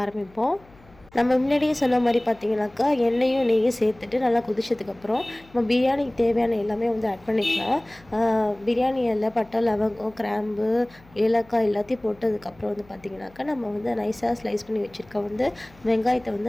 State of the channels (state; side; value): noise; left; hum, 26 dB below the sound